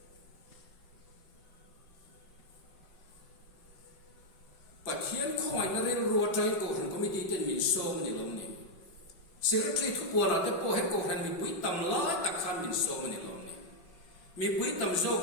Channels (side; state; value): right; late; 5.4 ms